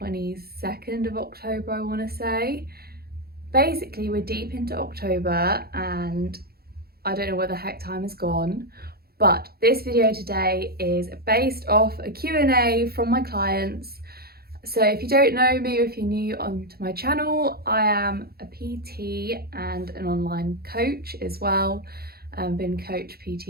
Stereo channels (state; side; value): late; left; 0.45 ms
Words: 22nd of October, I want to say. Basically, we're deep into October and I don't know where the heck time has gone. But this video today is based off a Q&A from my clients. So if you don't know me or if you're new onto my channel, I am a PT and an online coach as well. I've been coach